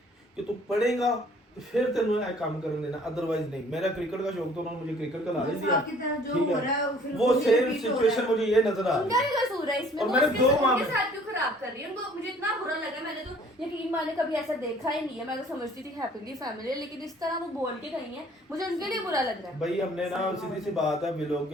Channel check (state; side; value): normal; both; correlation 0.55